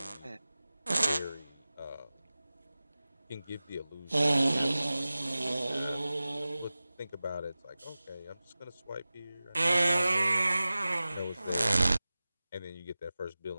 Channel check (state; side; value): inverted; both; correlation -0.96